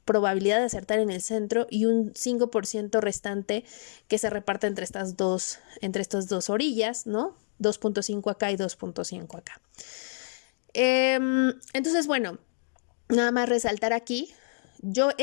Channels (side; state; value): right; silent; digital silence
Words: probabilidad de acertar en el centro y un 5% restante que se reparte entre estas dos orillas, ¿no? 2.5 acá y 2.5 acá. Entonces, bueno, nada más resaltar aquí, yo